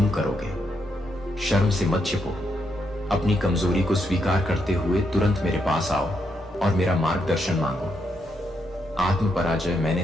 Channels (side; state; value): both; normal; correlation 0.80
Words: करोगे, शर्म से मत छिपो। अपनी कमजोरी को स्वीकार करते हुए तुरंत मेरे पास आओ और मेरा मार्गदर्शन मांगो। आत्म पराजय